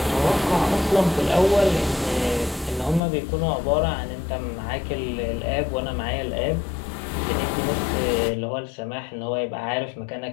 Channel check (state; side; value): drops out; right; at 3.0 s